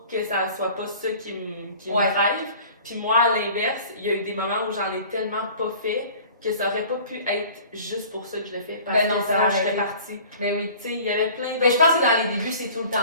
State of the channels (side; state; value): both; inverted; correlation -0.46